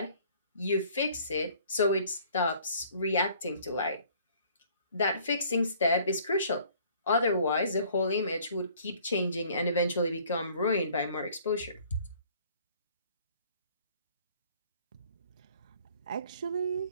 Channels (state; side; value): inverted; both; correlation -0.55